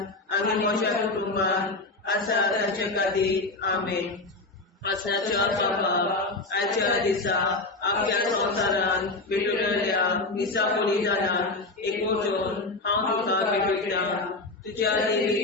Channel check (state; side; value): quieter; right; 3.2 dB